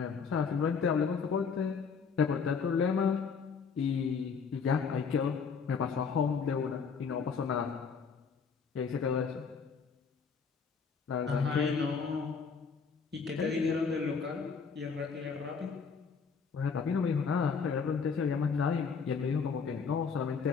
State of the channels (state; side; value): quieter; right; 5.8 dB